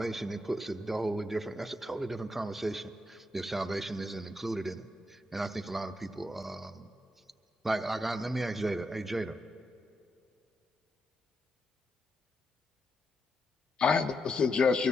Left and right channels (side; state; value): both; normal; correlation 0.83